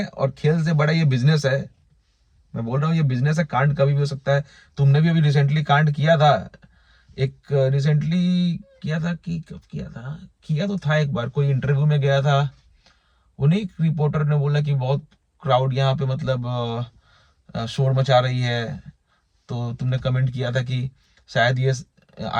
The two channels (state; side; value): identical; both; correlation 1.00